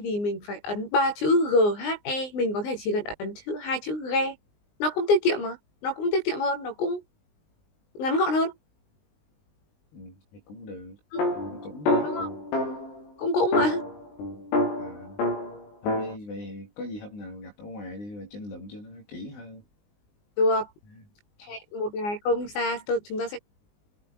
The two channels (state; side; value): late; right; 19 ms